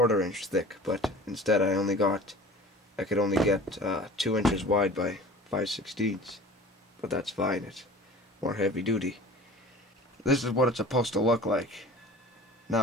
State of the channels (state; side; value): normal; both; correlation 0.41